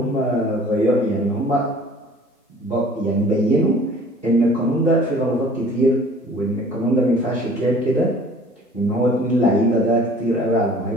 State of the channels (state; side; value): normal; both; correlation 0.50